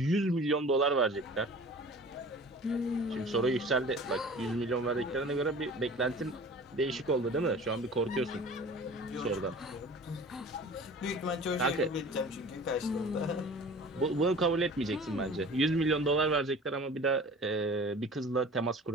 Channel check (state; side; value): normal; both; correlation 0.42